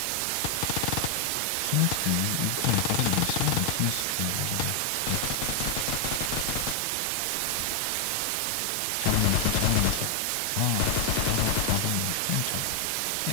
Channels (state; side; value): different; both; correlation 0.00